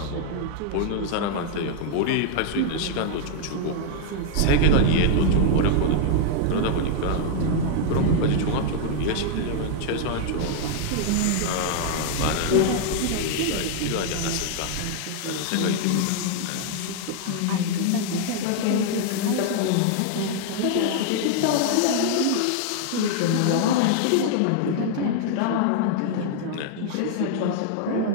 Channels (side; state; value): both; different; correlation 0.00